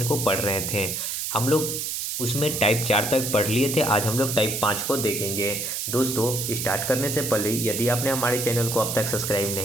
को पढ़ रहे थे। हम लोग उसमें टाइप 4 तक पढ़ लिए थे। आज हम लोग टाइप 5 को देखेंगे। दोस्तों, स्टार्ट करने से पहले यदि आपने हमारे चैनल को अब तक सब्सक्राइब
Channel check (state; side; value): noise; right; hiss, 3 dB below the sound